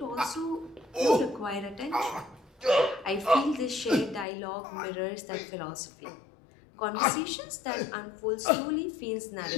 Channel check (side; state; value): right; drops out; at 4.2 s